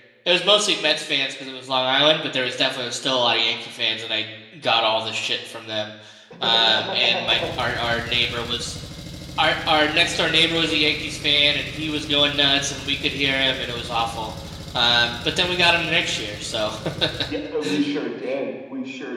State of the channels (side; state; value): both; identical; correlation 1.00